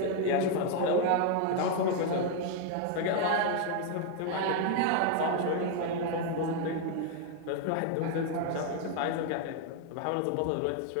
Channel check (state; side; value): different; both; correlation 0.00